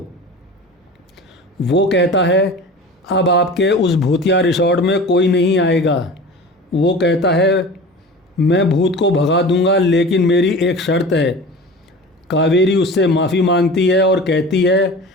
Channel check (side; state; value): both; normal; correlation 0.36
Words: वो कहता है अब आपके उस भूतिया रिसॉर्ट में कोई नहीं आएगा। वो कहता है मैं भूत को भगा दूंगा, लेकिन मेरी एक शर्त है। कावेरी उससे माफ़ी मांगती है और कहती है